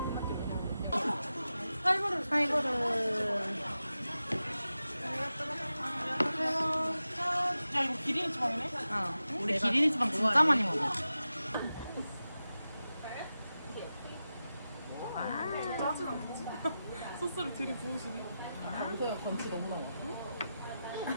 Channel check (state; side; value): inverted; both; correlation -0.92